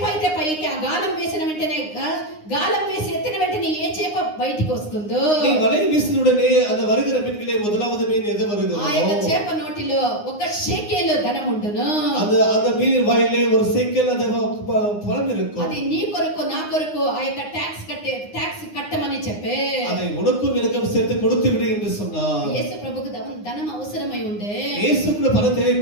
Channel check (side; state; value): right; late; 9.7 ms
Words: అయితే పైకి ఆ గాలం వేసిన వెంటనే గాలం వేసి ఎత్తిన వెంటనే ఏ చేప బయటికి వస్తుందో நீ வலை வீசினுடனே அந்த வருகிற மீன்களே முதலாவது மீன் எது ఆ வருகிறதோ యొక్క చేప నోటిలో ఒక షేకేలు ధనం ఉండును. அந்த மீனின் வாயிலே ஒரு சேக்கல் அந்த பணம் இருக்கும். అది నీ కొరకు నా కొరకు ఆ యొక్క ట్యాక్స్ కట్టమని చెప్పే. அதை உனக்கும் எனக்கும் சேர்த்து கொடுத்து விடு என்று சொன்னார். యేసు ప్రభుకు ధనం అవసరమై ఉండే. இயேசுக்கு பணம்